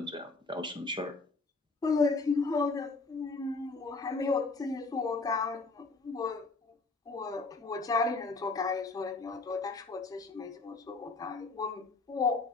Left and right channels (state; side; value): quieter; right; 3.7 dB